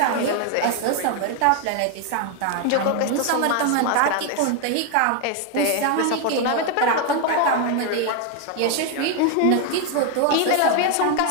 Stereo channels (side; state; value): both; different; correlation 0.01